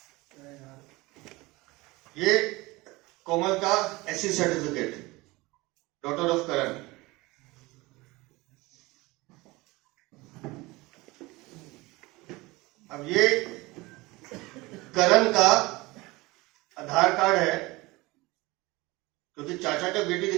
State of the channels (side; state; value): left; quieter; 21.9 dB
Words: ये कोमल का एससी सर्टिफिकेट, डॉटर ऑफ करण। अब ये करण का आधार कार्ड है, क्योंकि चाचा का बेटी